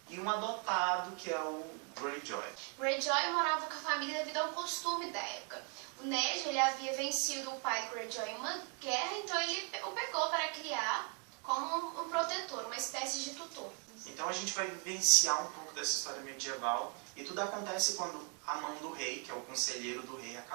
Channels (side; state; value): left; quieter; 37.9 dB